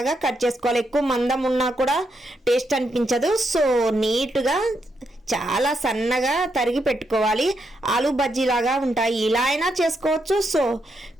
కట్ చేసుకోవాలి. ఎక్కువ మందం ఉన్నా కూడా టేస్ట్ అనిపించదు. సో నీట్గా చాలా సన్నగా తరిగి పెట్టుకోవాలి. ఆలు బజ్జీలాగా ఉంటాయి. ఇలా అయినా చేసుకోవచ్చు, సో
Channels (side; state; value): both; normal; correlation 0.80